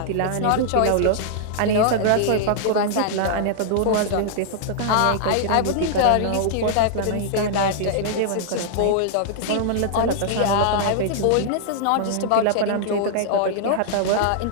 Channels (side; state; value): both; different; correlation -0.01